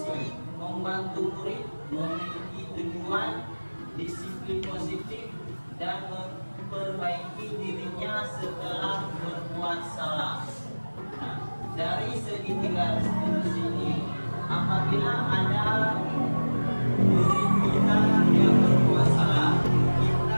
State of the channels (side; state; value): both; inverted; correlation -1.00